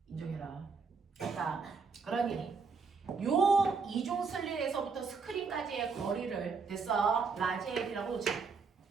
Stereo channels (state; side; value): quieter; left; 5.0 dB